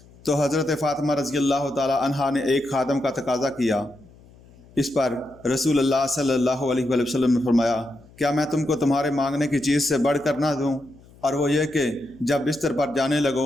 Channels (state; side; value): noise; left; hum, 25 dB below the sound